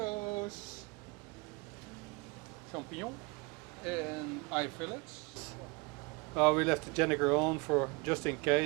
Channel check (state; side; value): quieter; left; 27.6 dB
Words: champignons, and eye fillets. We left the Jennifer on for just in